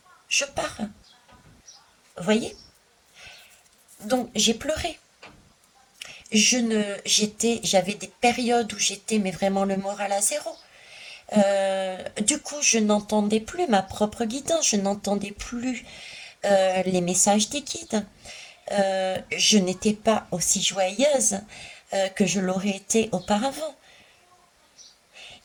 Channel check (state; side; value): identical; both; correlation 1.00